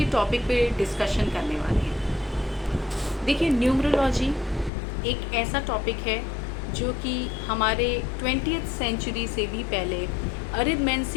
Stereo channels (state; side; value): drops out; right; at 4.7 s